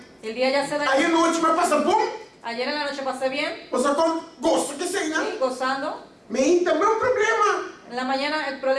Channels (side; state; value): both; identical; correlation 1.00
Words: El día ya se da. Aí a noite me passa bom. Ayer en la noche pasé bien. Você gosta que sei, né? Sí, gozando. Mas também é um problema. En la mañana el